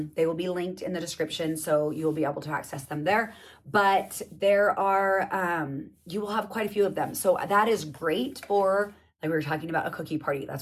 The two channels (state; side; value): identical; both; correlation 1.00